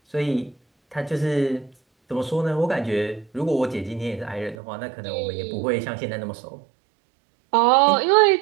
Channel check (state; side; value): drops out; left; at 4.5 s